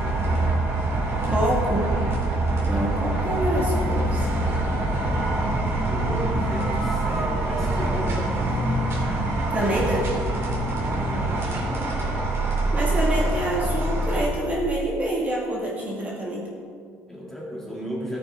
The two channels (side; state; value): both; normal; correlation 0.68